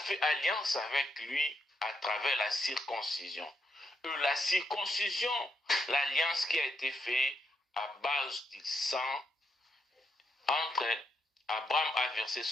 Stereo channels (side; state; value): both; normal; correlation 0.80